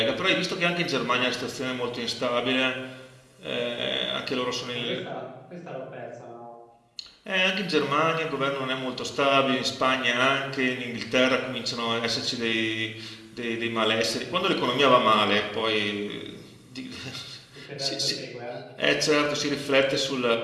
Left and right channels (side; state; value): both; identical; correlation 1.00